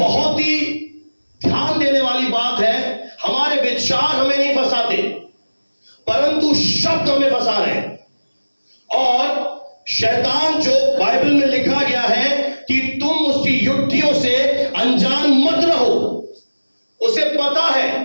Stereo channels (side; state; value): both; inverted; correlation -1.00